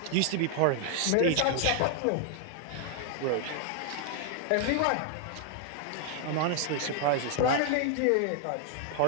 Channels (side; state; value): both; different; correlation 0.00